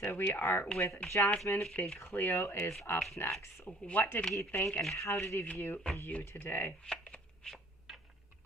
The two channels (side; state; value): both; normal; correlation 0.54